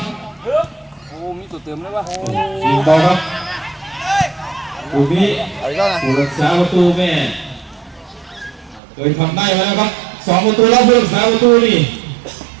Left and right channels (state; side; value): drops out; left; at 8.8 s